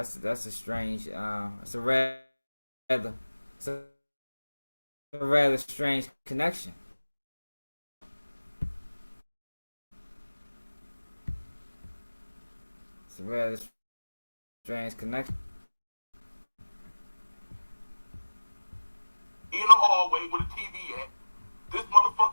a strange. It's a rather strange connection. It's a rather strange connection. In the hallway with a TV at. This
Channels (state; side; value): inverted; both; correlation -1.00